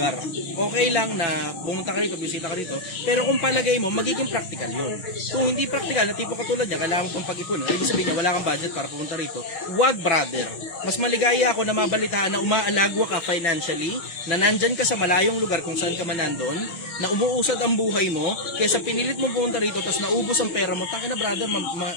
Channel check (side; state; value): right; late; 6.0 ms